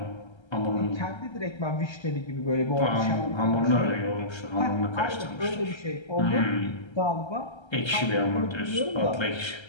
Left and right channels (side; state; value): right; late; 1.3 ms